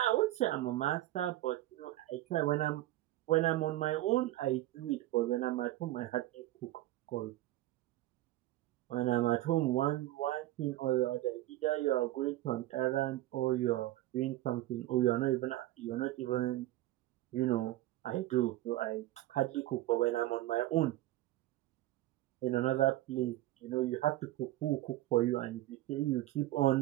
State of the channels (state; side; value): quieter; left; 16.0 dB